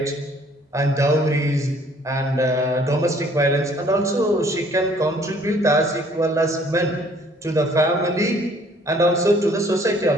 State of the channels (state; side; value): normal; both; correlation 0.59